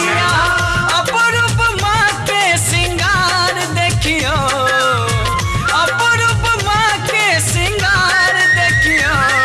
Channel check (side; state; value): both; identical; correlation 1.00